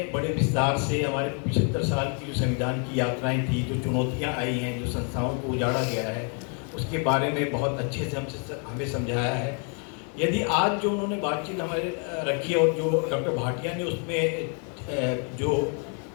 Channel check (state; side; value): quieter; right; 39.7 dB